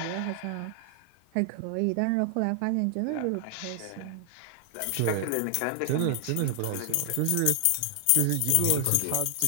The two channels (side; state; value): both; different; correlation 0.00